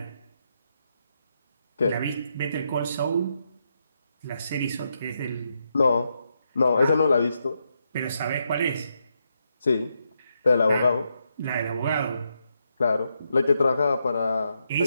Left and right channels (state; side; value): inverted; both; correlation -0.81